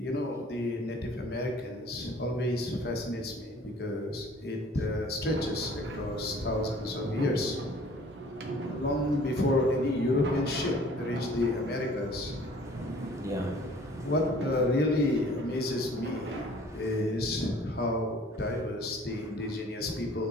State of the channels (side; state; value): both; normal; correlation 0.52